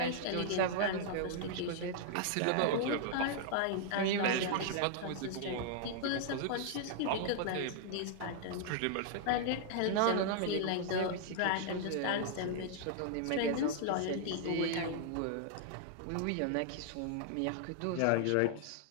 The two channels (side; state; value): both; different; correlation -0.01